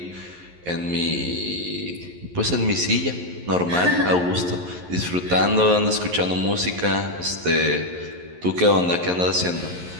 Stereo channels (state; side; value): late; left; 11 ms